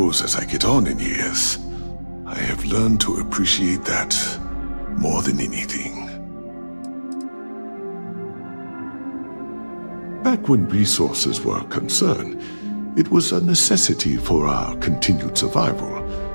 as I get on in years, I have learned to appreciate that more than anything. Back when resources were concerned, it was a necessity for our continued survival.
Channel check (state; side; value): inverted; both; correlation -1.00